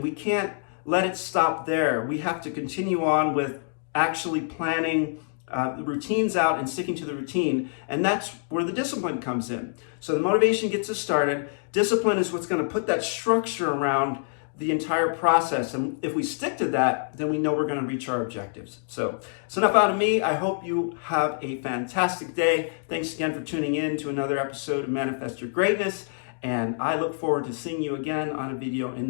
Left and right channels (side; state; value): right; silent; digital silence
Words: we can't let it stop there. We have to continue on with actually planning the routines out and sticking to the routine. And that's where the discipline comes in. So the motivation gets us started. Discipline is what's going to put that structure around the entire process. And if we stick to that, then we know we're going to reach our objectives. So it's enough out of me. I hope you have a fantastic day. Thanks again for tuning in to another episode of Manifest Your Greatness. And I look forward to seeing you again on a video in